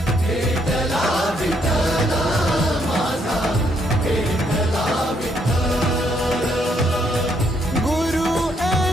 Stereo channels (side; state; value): both; normal; correlation 0.72